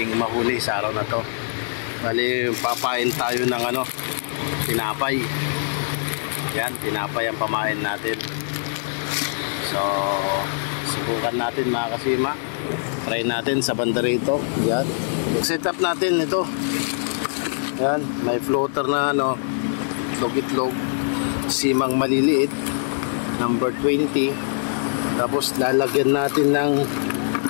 mahuli sa araw na to. Bali, papain tayo ng tinapay. Yan, tinapay ang pamain natin. So, subukan natin mga Kasima. Try natin sa banda rito. Yan. Set up natin ito. Yan, may floater na itlog-itlog. Simang maliliit. Number 20. Tapos lalagyan natin ng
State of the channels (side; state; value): right; silent; digital silence